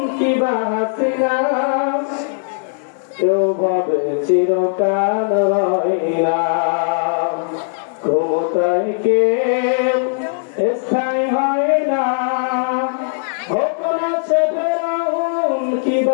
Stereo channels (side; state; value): right; silent; digital silence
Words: কিংবা হাসিনা, কেউ ভাবে চিরকাল হয় না। ক্ষমতায় কেউ স্থায়ী হয় না, কখনো সে ফেরাউন